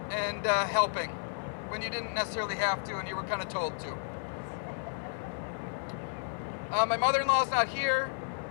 and helping when you didn't necessarily have to and you were kind of told to. My mother-in-law's not here.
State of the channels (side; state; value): right; silent; digital silence